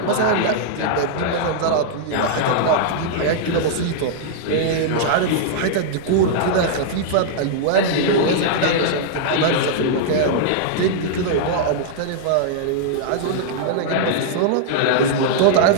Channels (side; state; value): both; different; correlation -0.01